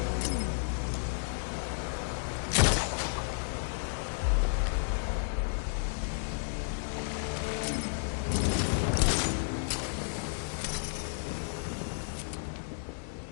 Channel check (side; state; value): right; silent; digital silence